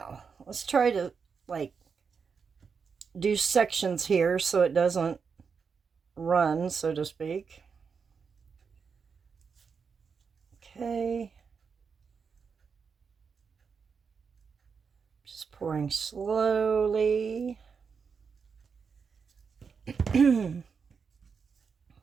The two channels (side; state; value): left; quieter; 5.8 dB